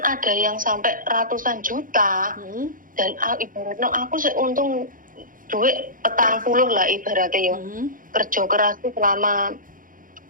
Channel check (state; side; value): late; left; 0.40 ms